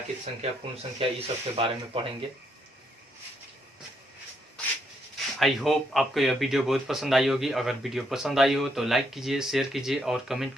संख्या, पूर्ण संख्या, ये सब के बारे में पढ़ेंगे। आई होप आपको यह वीडियो बहुत पसंद आई होगी। अगर वीडियो पसंद आई हो तो लाइक कीजिए, शेयर कीजिए और कमेंट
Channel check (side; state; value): both; normal; correlation 0.75